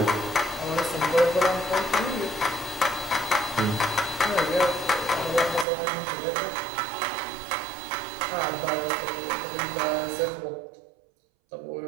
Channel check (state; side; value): drops out; left; at 5.7 s